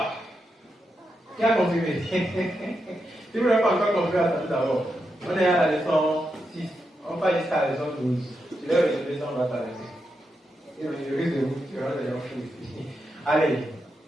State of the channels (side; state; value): both; normal; correlation 0.85